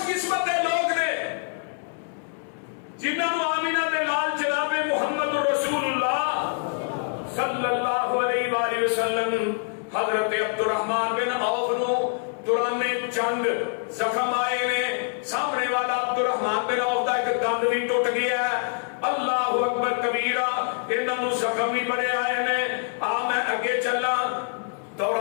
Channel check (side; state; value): right; silent; 61 dB below the other